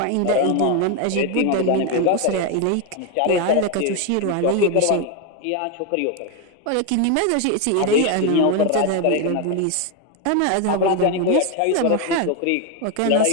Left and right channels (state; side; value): different; both; correlation 0.01